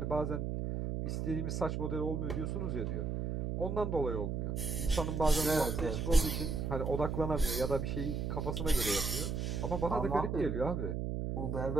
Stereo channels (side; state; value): right; noise; hum, 1 dB below the sound